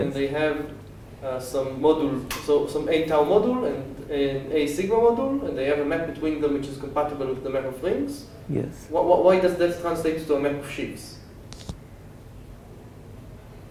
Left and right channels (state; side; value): identical; both; correlation 1.00